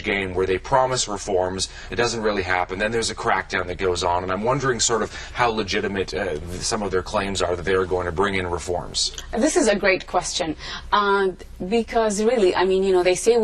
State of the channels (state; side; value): identical; both; correlation 1.00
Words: game where they promise reforms, it doesn't really happen, then there's a crackdown that goes on, and I'm wondering sort of how legitimate some of their claims are that they're going to bring in reforms. This is a great question, because really, I mean, you know, they say